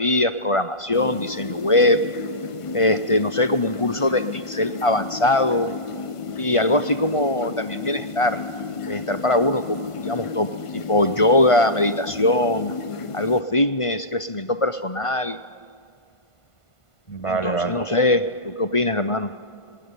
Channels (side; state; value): right; late; 1.5 ms